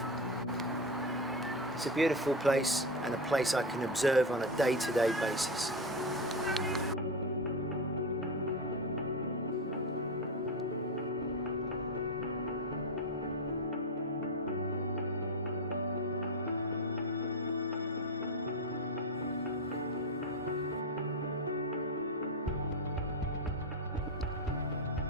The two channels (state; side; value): normal; both; correlation 0.15